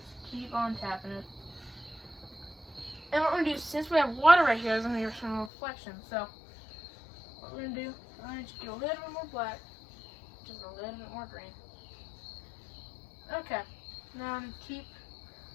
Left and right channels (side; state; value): right; drops out; at 5.5 s